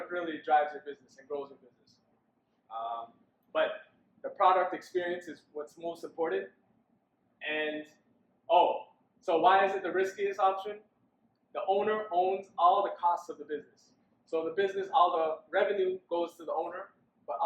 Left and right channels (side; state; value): both; identical; correlation 1.00